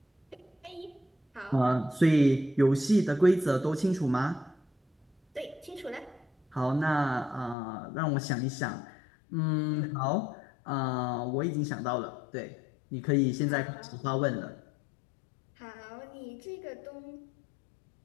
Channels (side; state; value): right; drops out; at 7.6 s